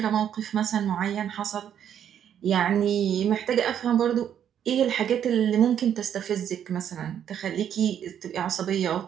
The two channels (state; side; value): quieter; left; 9.3 dB